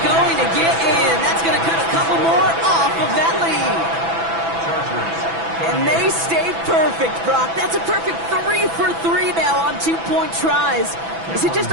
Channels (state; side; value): late; left; 6.0 ms